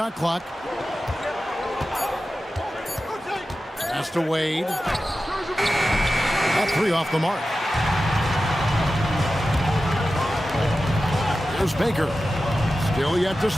clock. Pass to Wade. That three off the mark. Here's Baker. Still yet to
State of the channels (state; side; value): normal; both; correlation 0.93